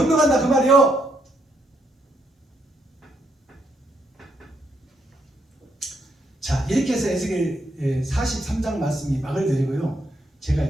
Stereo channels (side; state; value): both; normal; correlation 0.76